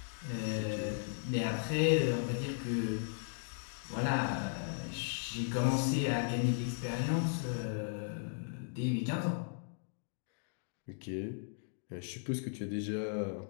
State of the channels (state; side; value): silent; right; digital silence